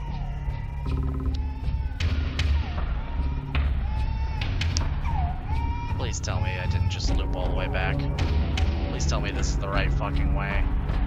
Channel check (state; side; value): identical; both; correlation 1.00